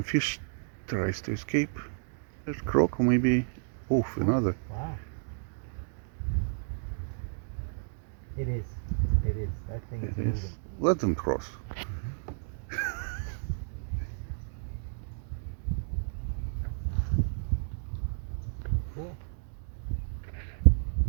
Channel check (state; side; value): silent; left; digital silence